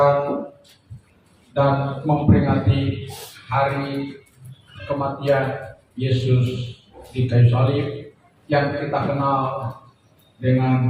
dan memperingati hari kematian Yesus di kayu salib yang kita kenal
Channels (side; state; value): both; identical; correlation 1.00